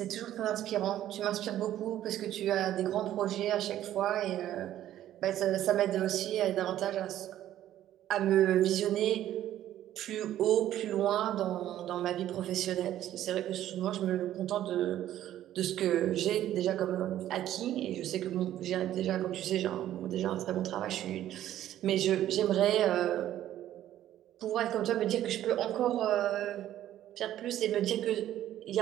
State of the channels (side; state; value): left; quieter; 12.4 dB